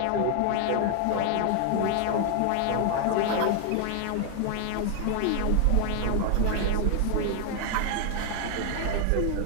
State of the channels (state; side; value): different; both; correlation 0.00